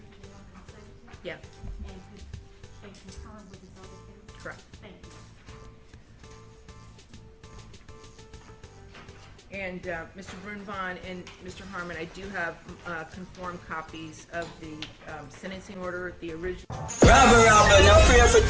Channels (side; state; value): both; identical; correlation 1.00